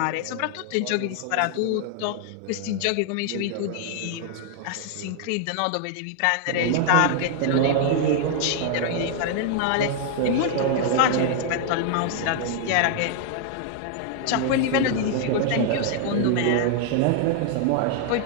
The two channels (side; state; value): both; different; correlation 0.00